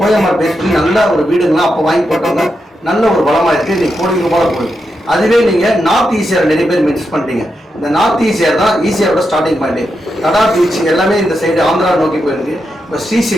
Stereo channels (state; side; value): normal; both; correlation 0.86